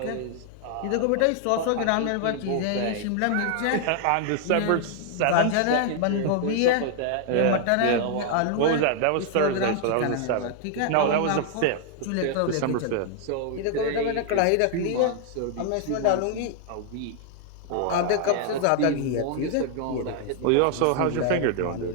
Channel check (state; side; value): different; both; correlation 0.00